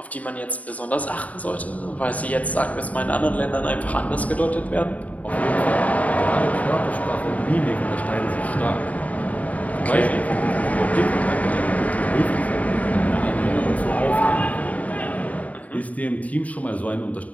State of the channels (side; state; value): right; late; 0.070 ms